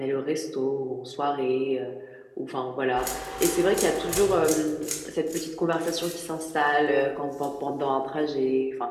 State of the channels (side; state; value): both; identical; correlation 1.00